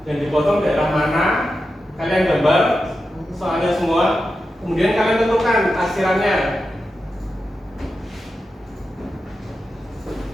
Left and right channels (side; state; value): both; normal; correlation 0.90